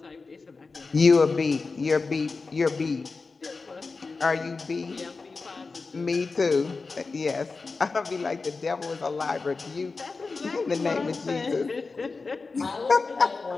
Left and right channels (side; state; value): right; quieter; 4.1 dB